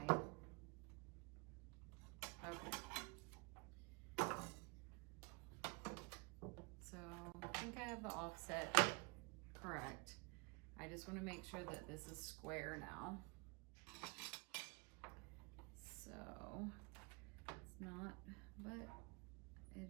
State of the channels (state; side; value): quieter; left; 30.2 dB